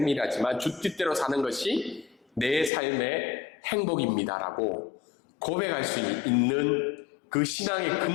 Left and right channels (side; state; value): right; drops out; at 2.7 s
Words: 주 뜻대로 사는 것이 내 삶의 행복입니다라고 고백할 수 있는 그 신앙의